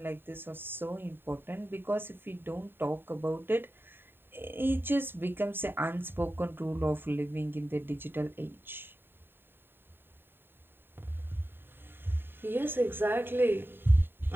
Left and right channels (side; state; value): left; late; 0.10 ms